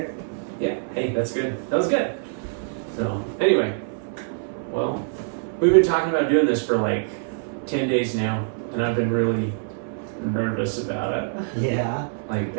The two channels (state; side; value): silent; left; 62 dB below the other